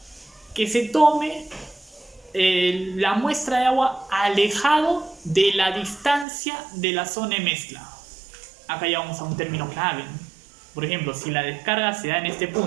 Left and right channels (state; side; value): drops out; left; at 6.2 s